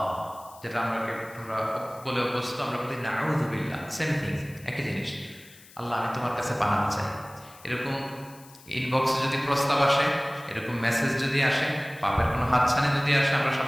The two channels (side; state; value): left; noise; hiss, 22 dB below the sound